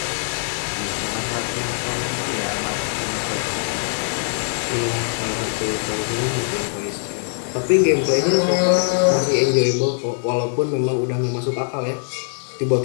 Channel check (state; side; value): silent; right; digital silence